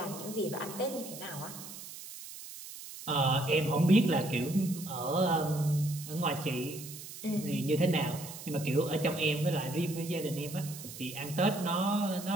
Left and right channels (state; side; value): noise; right; hiss, 12 dB below the sound